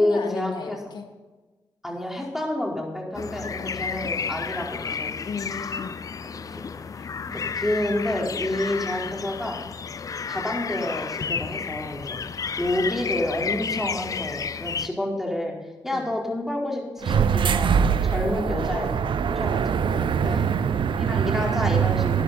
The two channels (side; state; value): both; normal; correlation 0.60